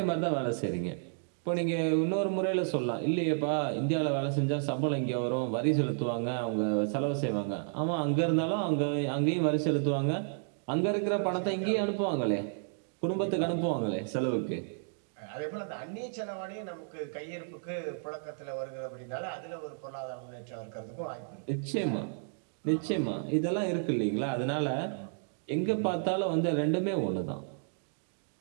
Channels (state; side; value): silent; left; digital silence